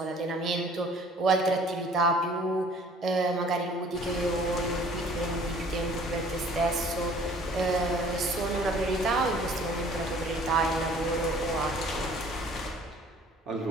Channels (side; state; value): both; normal; correlation 0.53